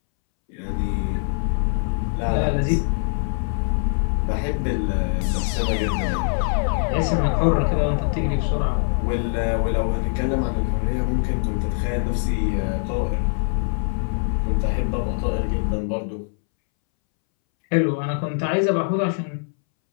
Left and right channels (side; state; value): right; silent; 64 dB below the other